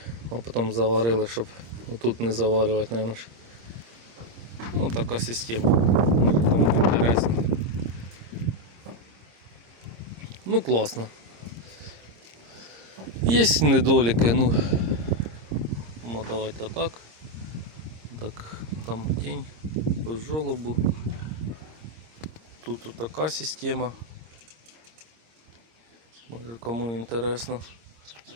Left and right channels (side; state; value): left; late; 26 ms